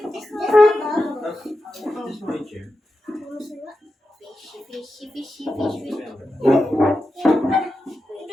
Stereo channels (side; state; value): both; normal; correlation 0.90